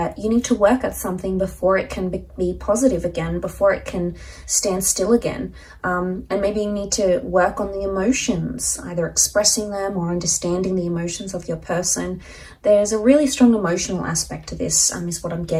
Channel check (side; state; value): both; identical; correlation 1.00